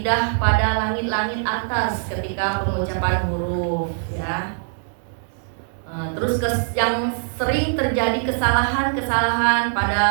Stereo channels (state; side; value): silent; left; digital silence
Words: pada langit-langit atas ketika pengucapan huruf ya. Terus yang sering terjadi kesalahan pada